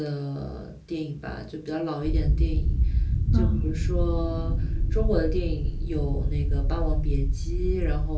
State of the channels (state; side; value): identical; both; correlation 1.00